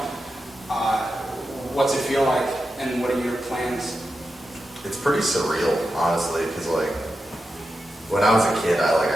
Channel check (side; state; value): both; normal; correlation 0.89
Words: What's it feel like, and what are your plans? It's pretty surreal, honestly, because like when I was a kid,